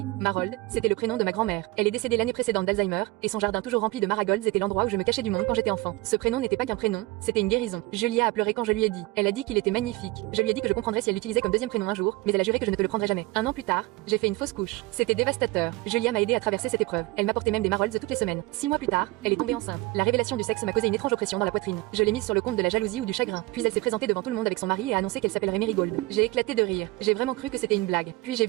Marold, c'était le prénom de ma grand-mère. Elle est décédée l'année précédente d'Alzheimer, et son jardin toujours rempli de marigolds était l'endroit où je me cachais du monde quand j'étais enfant. Ce prénom n'était pas qu'un prénom, c'était une guérison. Julia a pleuré quand je lui ai dit. Elle a dit qu'il était magnifique. Je lui ai dit que je comprendrais si elle l'utilisait comme deuxième prénom un jour, mais elle a juré que je ne te le prendrais jamais. Un an plus tard, j'ai fait une fausse couche. C'était dévastateur. Julia m'a aidé à traverser cette épreuve. Elle m'apportait même des marolds toutes les semaines. 6 mois plus tard, elle est tombée enceinte. La révélation du sexe m'a causé une étrange oppression dans la poitrine. Je l'ai mise sur le compte de la jalousie ou du chagrin. Puis elle s'est présentée devant tout le monde avec son mari et a annoncé qu'elle s'appellerait Marigold. J'ai éclaté de rire. J'ai vraiment cru que c'était une blague. Puis j'ai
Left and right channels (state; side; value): quieter; left; 20.8 dB